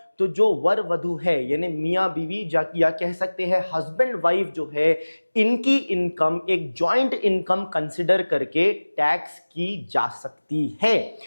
तो जो वर वधु है यानी मियाँ बीवी या कह सकते हैं हस्बैंड वाइफ जो है, इनकी इनकम एक जॉइंट इनकम कंसिडर करके टैक्स की जा सकती है।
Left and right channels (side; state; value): both; inverted; correlation -1.00